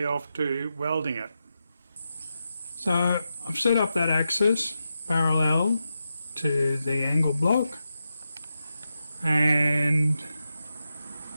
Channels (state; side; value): inverted; both; correlation -0.89